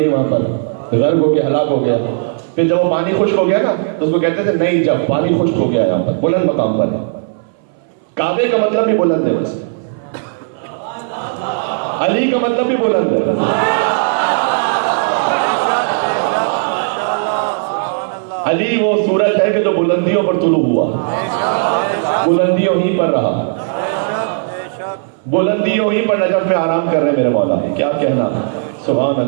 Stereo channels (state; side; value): silent; left; 63 dB below the other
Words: وہاں پر غرق ہو کے ہلاک ہو گیا۔ پھر جب وہ پانی خشک ہو گیا نا تو اس کو کہتے تھے نئی جب، پانی خشک ہو گیا یہاں پر، بلند مقام پر۔ کعبے کا مطلب بھی بلند ہے، ویسے علی کا مطلب بھی بلند ہے۔ علی وہ سورج ہے کہ جو بلندیوں پر طلوع ہوا، بلندیوں ہی پر رہا، بلندیوں ہی پر نجف میں آرام کر رہے میرے مولا، کیا کہنا ہے، سبحان